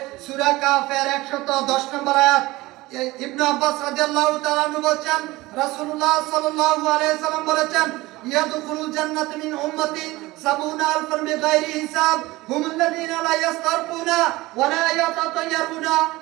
সূরা কাফের 110 নম্বর আয়াত। ইবনে আব্বাস রাদিয়াল্লাহু তাআলা আনহু বলেন রাসূলুল্লাহ সাল্লাল্লাহু আলাইহি সাল্লাম বলেছেন ইয়াদখুলুল জান্নাতা মিন উম্মতি 70 আলফান বিগাইরি হিসাব হুমুল্লাযীনা লা ইস্তারকুনা ওয়া লা ইয়াতাতায়্যারুনা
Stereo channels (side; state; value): left; quieter; 19.7 dB